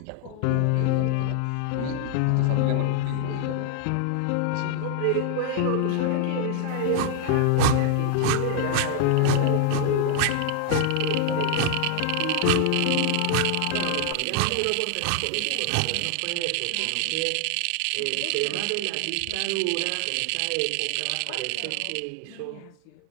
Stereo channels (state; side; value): different; both; correlation 0.00